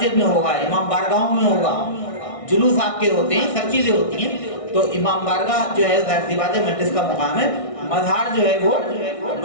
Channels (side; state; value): right; late; 1.6 ms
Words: میں ہوگا، امام بارگاہوں میں ہوگا، جلوس آپ کے ہوتے ہیں، سب چیزیں ہوتی ہیں. تو امام بارگاہ جو ہے ظاہر سی بات ہے مجلس کا مقام ہے، مزار جو ہے وہ